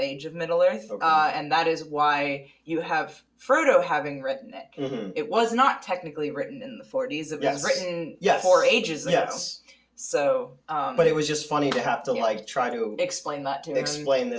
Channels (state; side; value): identical; both; correlation 1.00